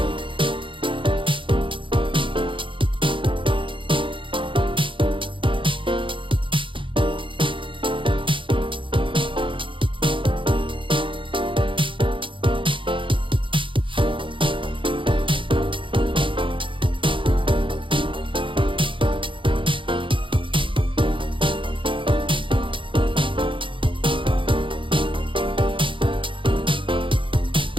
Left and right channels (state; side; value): late; left; 0.25 ms